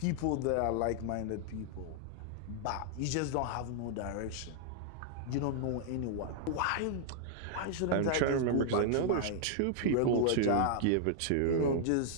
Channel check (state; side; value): different; both; correlation -0.01